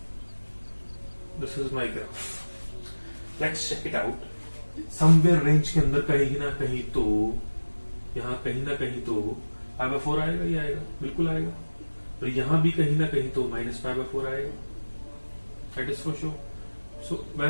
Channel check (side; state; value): both; inverted; correlation -1.00